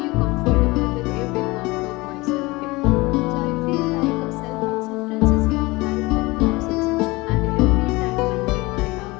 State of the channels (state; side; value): quieter; right; 22.5 dB